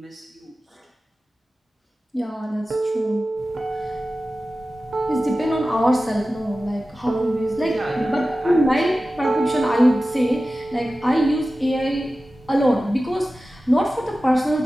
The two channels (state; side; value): normal; both; correlation 0.95